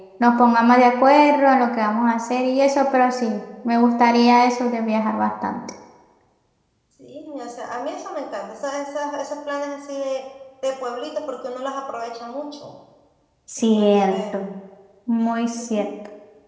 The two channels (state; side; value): identical; both; correlation 1.00